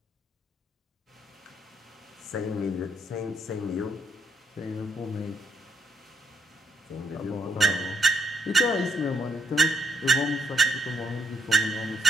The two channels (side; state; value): both; normal; correlation 0.74